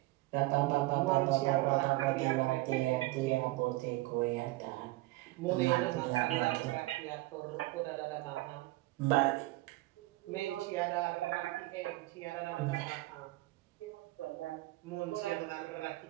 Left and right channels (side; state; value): left; quieter; 19.6 dB